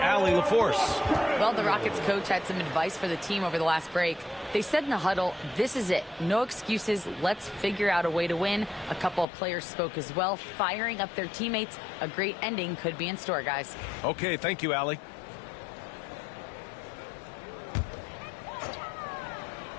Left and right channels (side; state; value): right; drops out; at 9.2 s